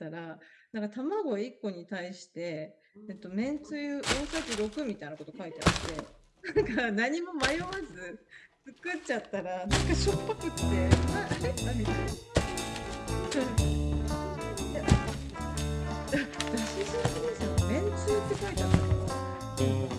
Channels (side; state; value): both; identical; correlation 1.00